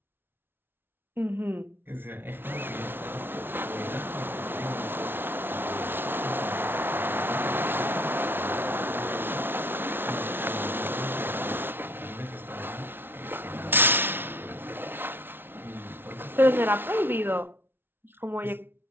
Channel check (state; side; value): late; left; 0.11 ms